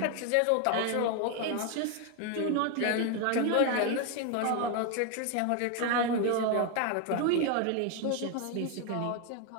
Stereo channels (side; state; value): both; different; correlation 0.01